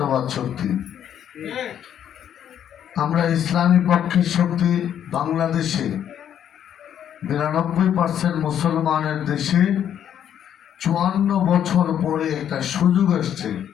শক্তি। আমরা ইসলামী পক্ষের শক্তি বাংলাদেশে 92% মুসলমানের দেশে 54 বছর পরে একটা সুযোগ আসছে,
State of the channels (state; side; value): quieter; right; 9.7 dB